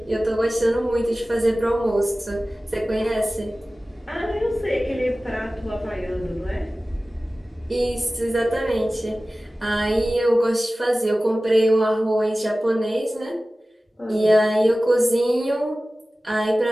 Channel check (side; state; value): both; normal; correlation 0.97